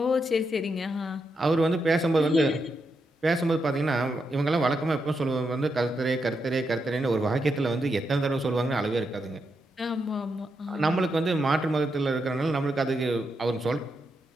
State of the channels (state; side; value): normal; both; correlation 0.83